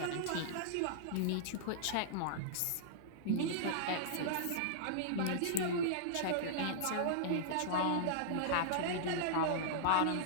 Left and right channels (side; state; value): both; different; correlation -0.02